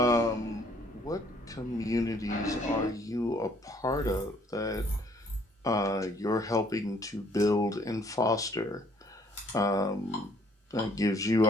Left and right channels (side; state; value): both; normal; correlation 0.62